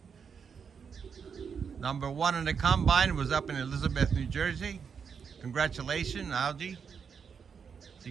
Number 1 in the combine was up in Elizabeth, New Jersey. Congratulations, Algie. She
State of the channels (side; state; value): left; quieter; 6.5 dB